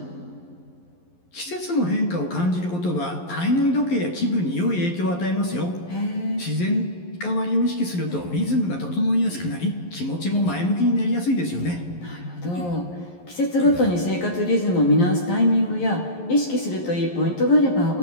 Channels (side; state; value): right; late; 11 ms